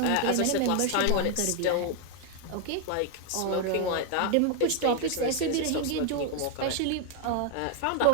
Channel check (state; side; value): different; both; correlation 0.00